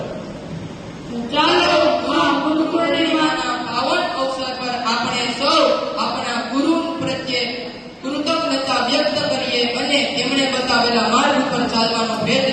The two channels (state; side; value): identical; both; correlation 1.00